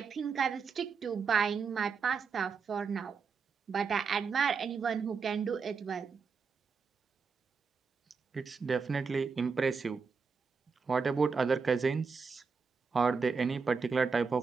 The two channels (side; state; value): left; quieter; 5.3 dB